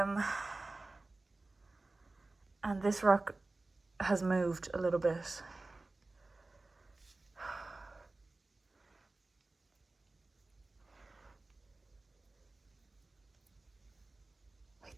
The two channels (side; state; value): left; quieter; 3.2 dB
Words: this rock has moved a little bit.